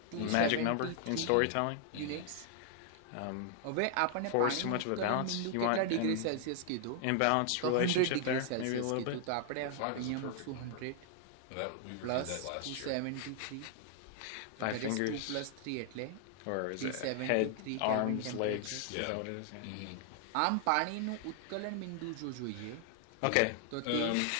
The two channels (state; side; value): different; both; correlation 0.00